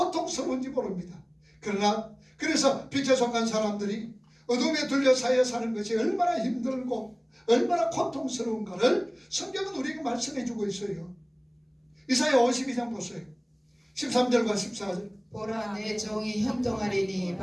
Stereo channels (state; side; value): identical; both; correlation 1.00